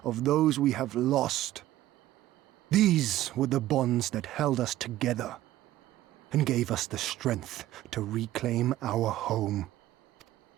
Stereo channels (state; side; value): quieter; left; 14.6 dB